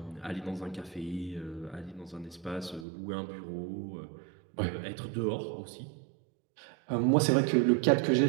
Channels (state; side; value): drops out; left; at 2.9 s